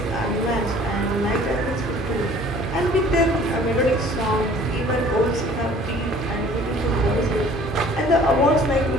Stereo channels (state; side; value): normal; both; correlation 0.51